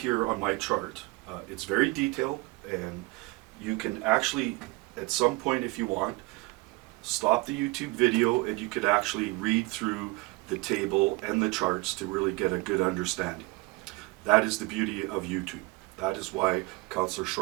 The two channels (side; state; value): left; quieter; 23.7 dB